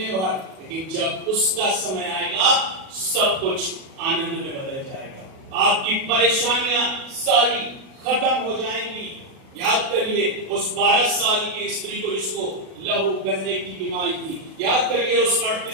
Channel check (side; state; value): left; late; 37 ms